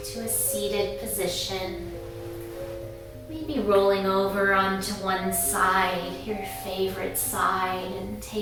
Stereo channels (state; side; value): identical; both; correlation 1.00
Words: to a seated position. Maybe rolling over onto one side, your favorite side, and